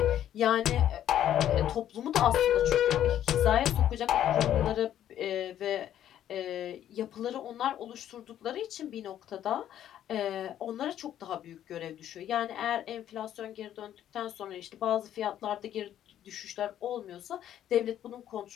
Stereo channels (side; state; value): right; quieter; 11.1 dB